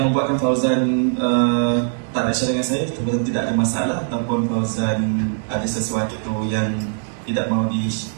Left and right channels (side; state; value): left; silent; 56 dB below the other